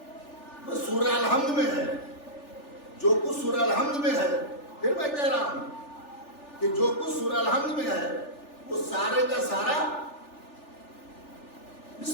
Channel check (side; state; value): right; late; 3.4 ms